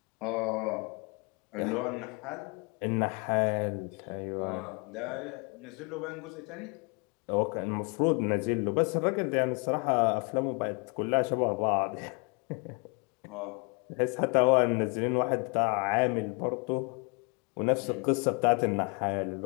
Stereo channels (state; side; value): quieter; right; 33.1 dB